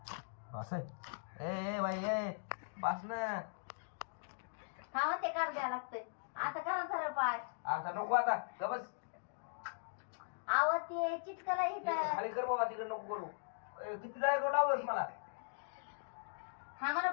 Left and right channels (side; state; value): right; silent; digital silence